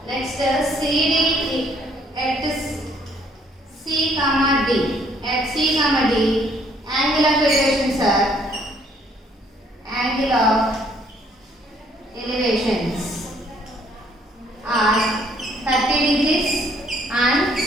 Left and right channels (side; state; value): both; normal; correlation 0.65